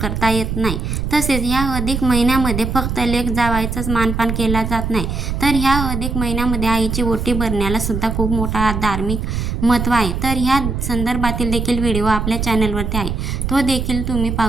येत नाही. तसेच ह्या अधिक महिन्यामध्ये फक्त लेक जावयाचाच मानपान केला जात नाही, तर ह्या अधिक महिन्यामध्ये आईची ओटी भरण्याला सुद्धा खूप मोठा धार्मिक महत्त्व आहे. तर ह्या संदर्भातील देखील व्हिडिओ आपल्या चॅनलवरती आहे, तो देखील तुम्ही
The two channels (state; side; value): noise; right; rumble, 3 dB below the sound